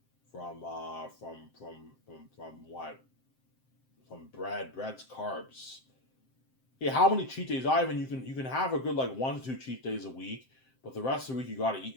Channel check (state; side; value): late; right; 7.7 ms